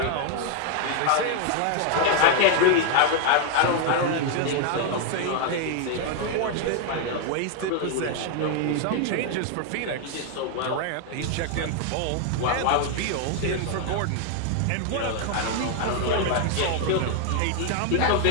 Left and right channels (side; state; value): both; different; correlation 0.00